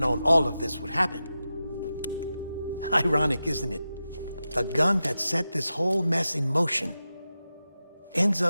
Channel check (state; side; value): inverted; both; correlation -0.92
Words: all of this would happen. Ironic, isn't it? The gun that set this whole mess in motion ends